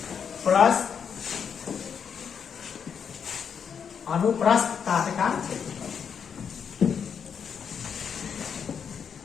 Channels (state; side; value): quieter; right; 7.1 dB